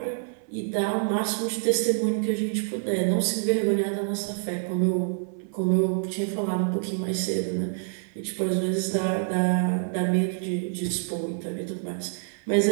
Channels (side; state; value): left; silent; 55 dB below the other